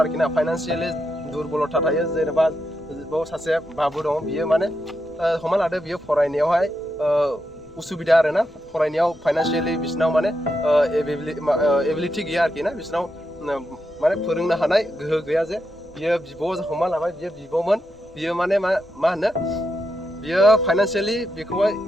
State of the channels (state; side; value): normal; both; correlation 0.84